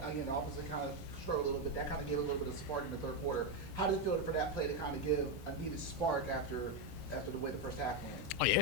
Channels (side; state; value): right; late; 7.1 ms